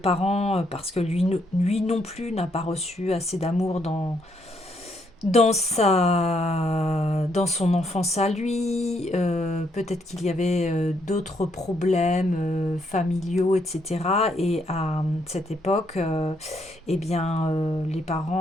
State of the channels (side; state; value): both; normal; correlation 0.73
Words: parce que lui non plus n'a pas reçu assez d'amour dans son enfance à lui, peut-être qu'il y avait d'autres problèmes familiaux, etc. Et à cette époque, eh bien, les